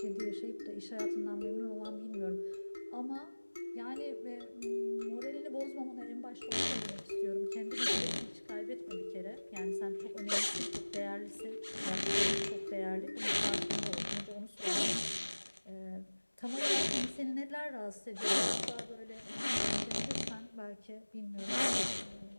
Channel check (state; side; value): inverted; both; correlation -1.00